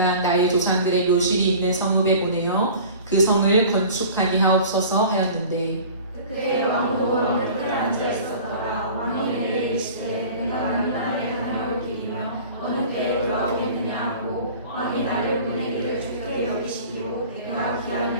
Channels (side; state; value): both; inverted; correlation -0.42